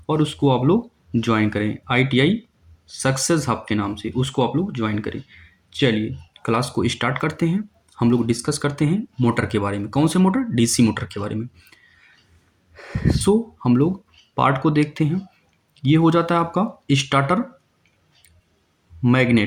और उसको आप लोग ज्वाइन करें। ITI सक्सेस हब के नाम से उसको आप लोग ज्वाइन करें। चलिए क्लास को स्टार्ट करते हैं। हम लोग डिस्कस करते हैं मोटर के बारे में। कौन से मोटर? DC मोटर के बारे में। हम लोग पार्ट को देखते हैं। ये हो जाता है आपका स्टार्टर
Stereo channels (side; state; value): both; identical; correlation 1.00